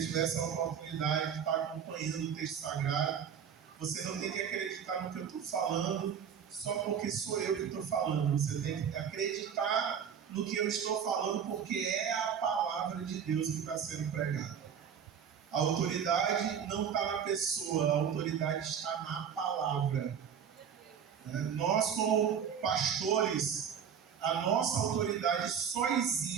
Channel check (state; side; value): quieter; left; 7.8 dB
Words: tivesse a oportunidade de estar acompanhando o texto sagrado. Você não tem que acreditar no que eu estou falando só porque sou eu que estou falando. Você tem que acreditar no que eu estou falando, porque é a palavra de Deus que está sendo pregada. A autoridade não está na pessoa, a autoridade está na palavra. Nós, como pastores, a nossa autoridade só